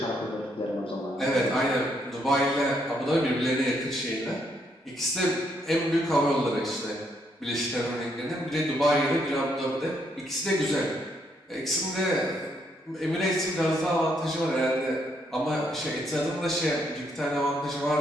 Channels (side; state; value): both; normal; correlation 0.74